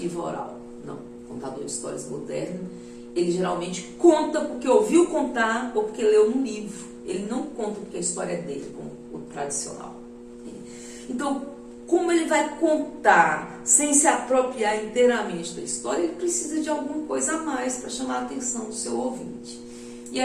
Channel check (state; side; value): identical; both; correlation 1.00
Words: oral. Não, o contador de histórias moderno, ele geralmente conta porque ouviu contar ou porque leu num livro. Ele não conta porque a história é dele, como o tradicional. Então, como ele vai contar sem se apropriar inteiramente da história, ele precisa de alguma coisa a mais para chamar a atenção do seu ouvinte. E